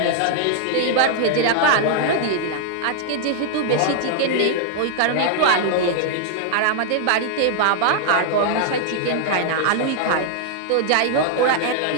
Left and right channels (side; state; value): both; different; correlation 0.00